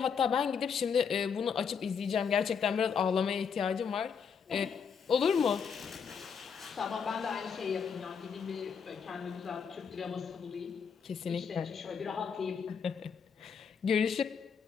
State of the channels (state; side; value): quieter; right; 6.5 dB